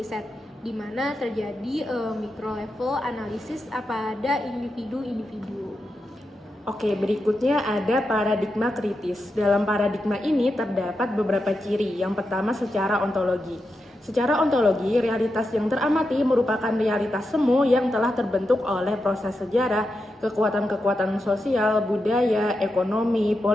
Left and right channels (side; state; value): both; normal; correlation 0.88